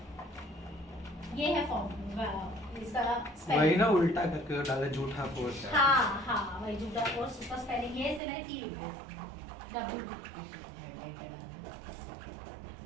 ये है फॉर्म इसका वही ना उल्टा करके डाला, झूठा फोर्स. हाँ वही झूठा फोर्स. उसका स्पेलिंग ये से मैंने P लिखा है, WP.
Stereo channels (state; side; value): drops out; left; at 8.2 s